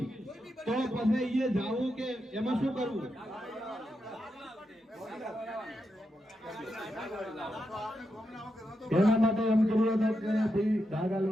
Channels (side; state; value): both; normal; correlation 0.85